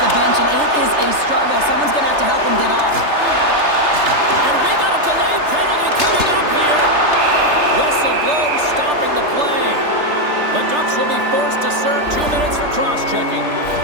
the bench, and it is a struggle. Someone's going to have to help him get off. And we got a delayed penalty coming up here. Whistle blows, stopping the play. The Ducks will be forced to serve 2 minutes for cross-checking.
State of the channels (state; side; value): late; left; 3.3 ms